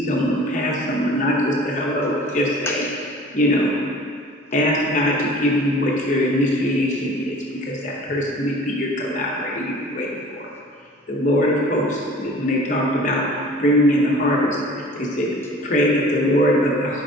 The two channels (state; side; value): normal; both; correlation 0.46